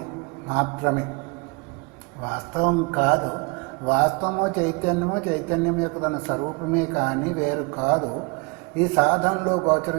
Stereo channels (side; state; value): left; quieter; 30.1 dB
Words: మాత్రమే, వాస్తవం కాదు. వాస్తవము చైతన్యం యొక్క తన స్వరూపమే కానీ వేరు కాదు. ఈ సాధనలో